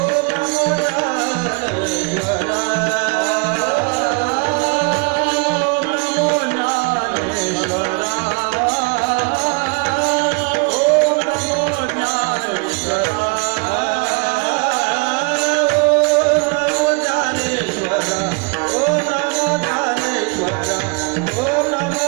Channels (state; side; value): quieter; left; 32.6 dB